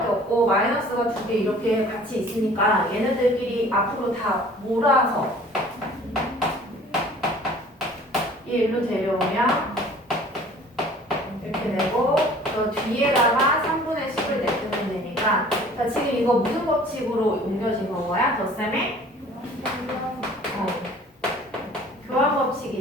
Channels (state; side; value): normal; both; correlation 0.50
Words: 없고 마이너스가 2개 이렇게 같이 있으니까 얘네들끼리 앞으로 다 몰아서 얘 일로 데려오면 그 뒤에다가 3분의 10을 내주면 되니까 자 지금 이거 무슨 법칙으로 옮겨진 건 거야? 덧셈의 교환